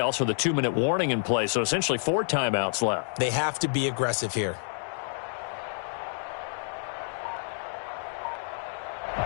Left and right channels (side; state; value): right; silent; digital silence